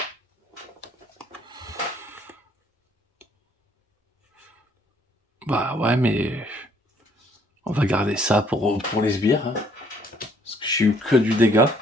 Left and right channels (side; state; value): both; normal; correlation 0.64